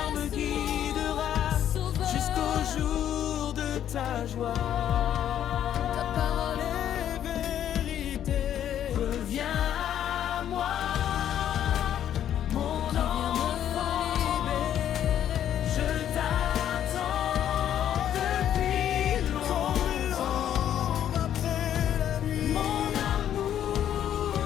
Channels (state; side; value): quieter; right; 10.5 dB